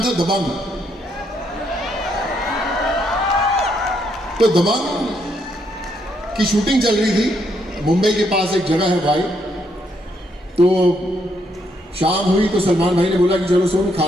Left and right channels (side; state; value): both; normal; correlation 0.74